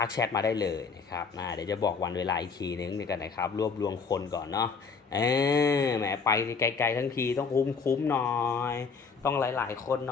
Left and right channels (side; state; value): right; quieter; 5.3 dB